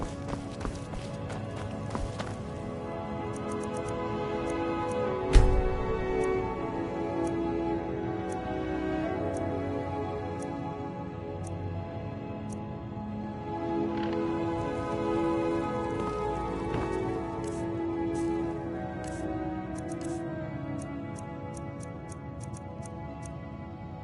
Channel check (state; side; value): identical; both; correlation 1.00